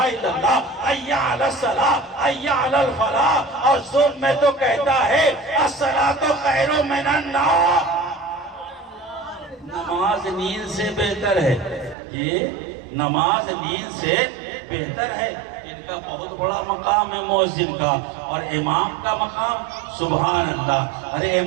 اللہ، حی علی الصلاۃ حی علی الفلاح، اور زور میں تو کہتا ہے الصلاۃ خیر من النوم، نماز نیند سے بہتر ہے، یہ نماز نیند سے بہتر ہے۔ ان کا بہت بڑا مقام ہے مؤذن کا، اور امام کا مقام سبحان اللہ، ارے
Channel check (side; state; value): left; drops out; at 12.0 s